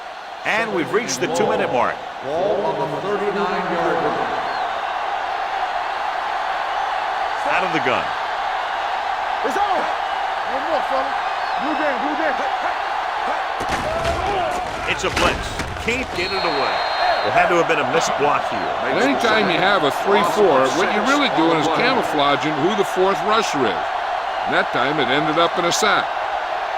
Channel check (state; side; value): identical; both; correlation 1.00